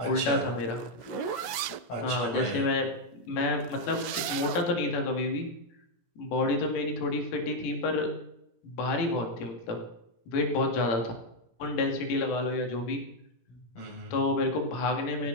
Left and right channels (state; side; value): late; right; 16 ms